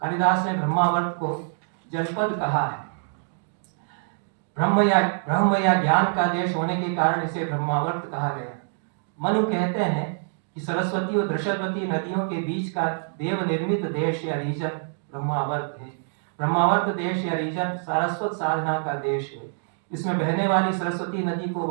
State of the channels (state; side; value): silent; left; digital silence